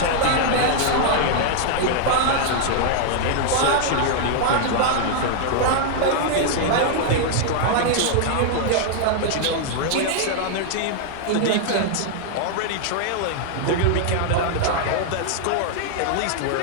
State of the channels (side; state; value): both; different; correlation -0.01